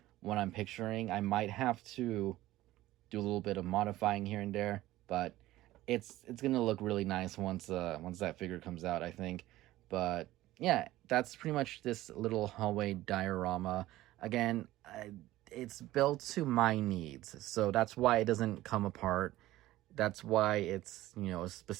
when I'm picturing. I might have to do a little bit of modifying here and there, but it's gonna look really nice once that figure comes out, I think. But yeah, that's pretty much this little hallway diorama. Again, it's built to my needs, so that's why it doesn't come apart. That's why it's, you know, a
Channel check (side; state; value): left; quieter; 16.1 dB